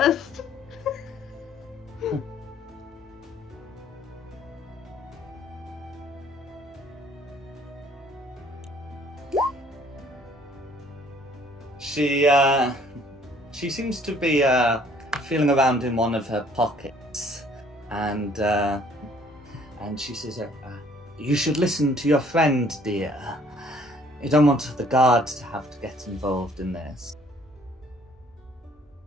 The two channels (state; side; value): normal; both; correlation 0.59